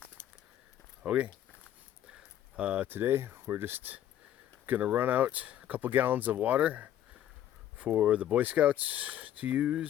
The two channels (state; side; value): quieter; right; 11.5 dB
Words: Okay. Today we're just gonna run out a couple gallons of water for the Boy Scouts to